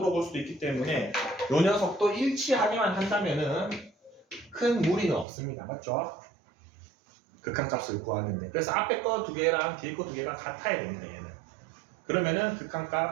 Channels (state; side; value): drops out; left; at 5.2 s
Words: 수도 있기 때문에 요 녀석도 일치하기만 한다면은 큰 무리는 없습니다. 맞죠? 극한값을 구하는데. 그래서 앞에 거 두 개랑 뒤에 거 두 개가 같아야 됩니다. 얘는. 그러면은